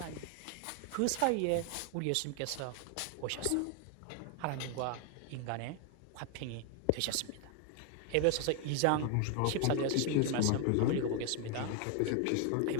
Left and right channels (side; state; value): both; different; correlation 0.00